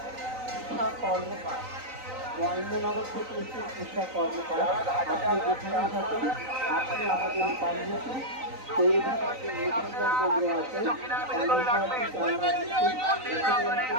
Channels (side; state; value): left; late; 3.9 ms